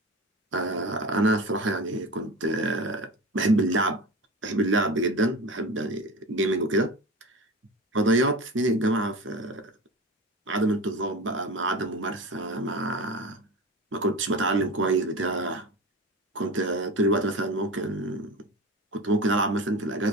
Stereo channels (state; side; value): normal; both; correlation 0.30